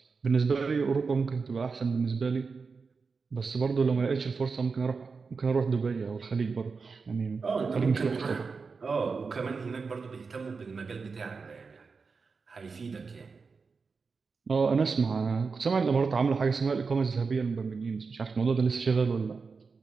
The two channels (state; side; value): quieter; left; 4.8 dB